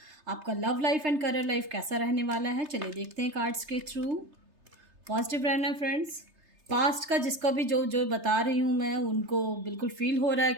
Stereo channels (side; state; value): left; late; 3.3 ms